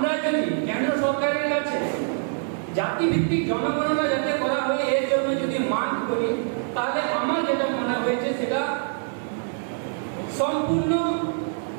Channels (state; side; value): silent; left; digital silence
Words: যদি কেন্দ্র সরকারের কাছে জাতিভিত্তিক জনগণনা যাতে করা হয় এর জন্য যদি মান করি তাহলে আমার যেটা মনে হয়েছে সেটা সম্পূর্ণ